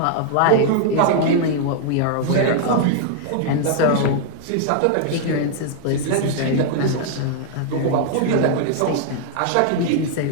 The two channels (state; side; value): different; both; correlation 0.00